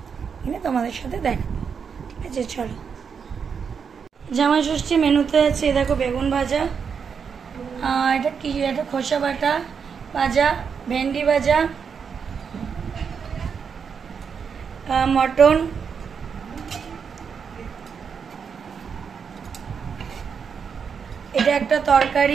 কিনে তোমাদের সাথে দেখাবো। ঠিক আছে, চলো। জামাই ষষ্ঠী মেনুতে আছে, দেখো বেগুন ভাজা, এটা কি, এটা খোসা বাটা ভাজা, ভেন্ডি ভাজা, মটন, এটা একটা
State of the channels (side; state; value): left; quieter; 6.4 dB